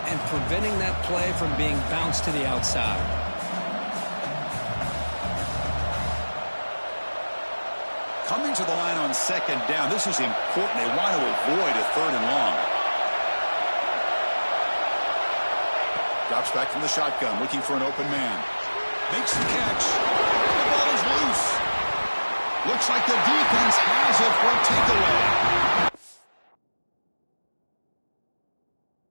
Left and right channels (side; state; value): both; inverted; correlation -1.00